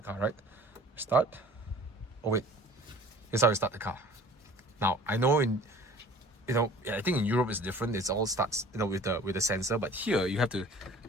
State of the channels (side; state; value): both; normal; correlation 0.47